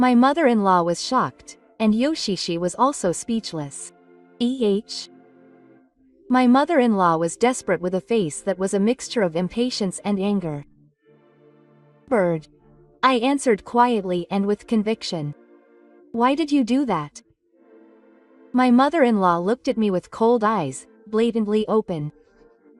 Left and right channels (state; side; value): identical; both; correlation 1.00